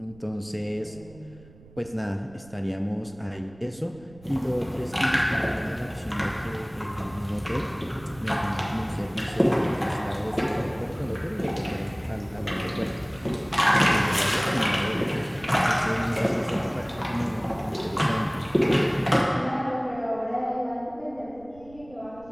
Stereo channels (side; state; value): right; noise; rumble, 22 dB below the sound